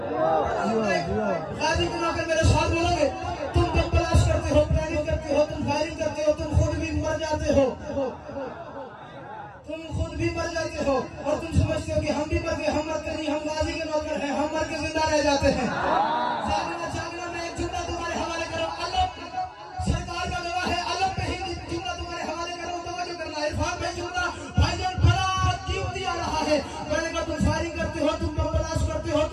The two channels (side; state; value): both; identical; correlation 1.00